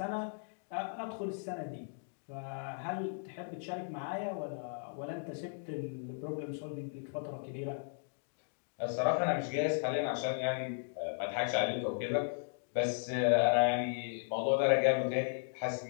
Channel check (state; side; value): silent; right; digital silence